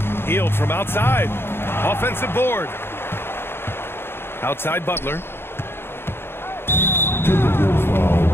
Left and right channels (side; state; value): right; late; 0.11 ms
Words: Hield from outside. Offensive board. Outside Butler. Timberwolves foul.